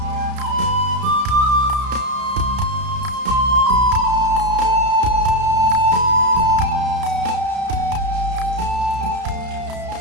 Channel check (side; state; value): left; late; 32 ms